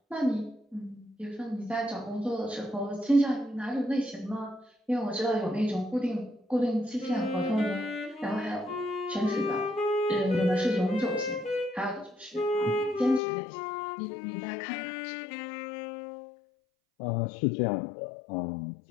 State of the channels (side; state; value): right; drops out; at 13.2 s